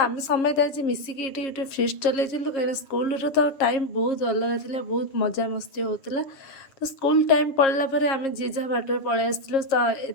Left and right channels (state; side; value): late; right; 7.4 ms